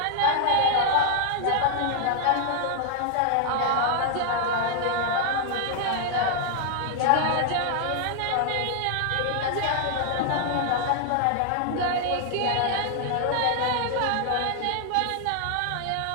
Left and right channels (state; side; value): different; both; correlation 0.00